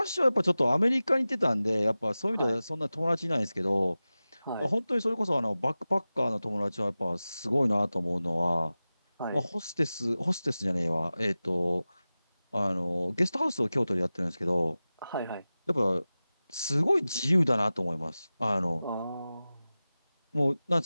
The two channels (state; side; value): inverted; both; correlation -0.96